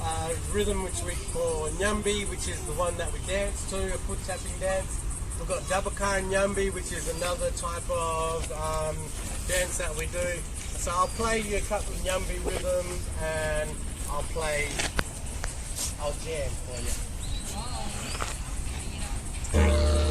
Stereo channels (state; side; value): identical; both; correlation 1.00